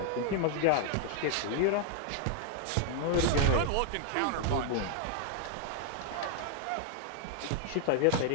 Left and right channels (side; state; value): both; different; correlation 0.00